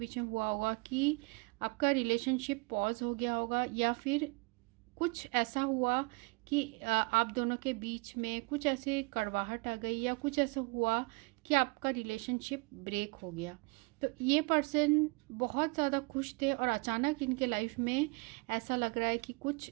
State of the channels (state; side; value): quieter; left; 29.3 dB